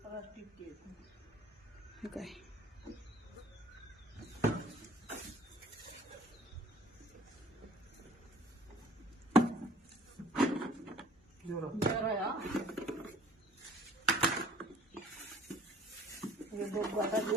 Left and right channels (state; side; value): normal; both; correlation 0.53